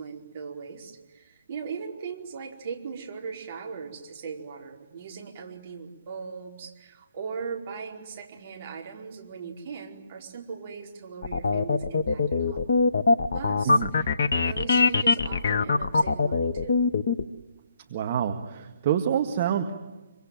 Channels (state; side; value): inverted; both; correlation -0.72